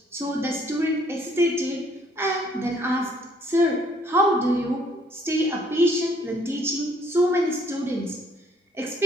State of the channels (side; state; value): both; normal; correlation 0.63